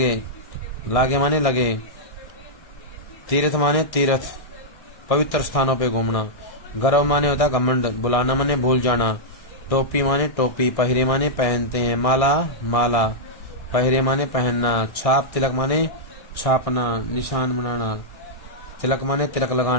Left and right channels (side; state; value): right; late; 1.6 ms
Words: लागे माने लगे, तीर्थ माने तीर्थ पवित्र स्थानों पे घूमना, गर्व माने होता है घमंड, बुलाना माने भूल जाना, टोपी माने टोपी, पहरे माने पहनते हैं, माला माला, पहरे माने पहनना, छाप तिलक माने छापना, निशान बनाना, तिलक माने तिलक